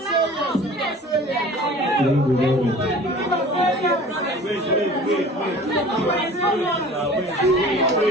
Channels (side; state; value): both; normal; correlation 0.44